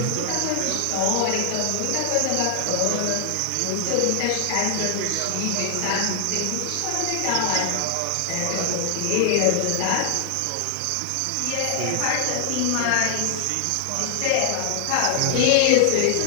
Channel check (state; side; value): different; both; correlation 0.00